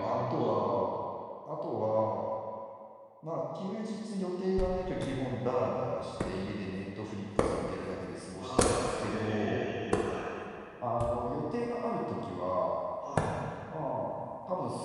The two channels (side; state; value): both; identical; correlation 1.00